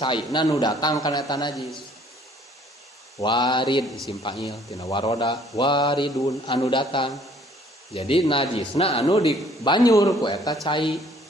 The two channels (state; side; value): normal; both; correlation 0.59